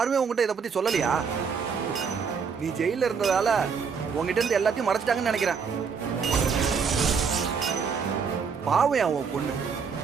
உங்ககிட்ட இதை பத்தி சொல்லலையா? நீ ஜெயில இருந்ததால உங்ககிட்ட இருந்து எல்லாத்தையும் மறைச்சிட்டாங்கன்னு நினைக்கிறேன். பாவம் உன் பொண்ணு,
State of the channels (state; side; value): quieter; left; 6.0 dB